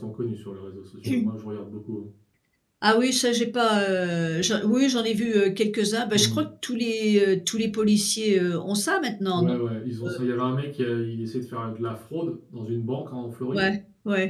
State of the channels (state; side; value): identical; both; correlation 1.00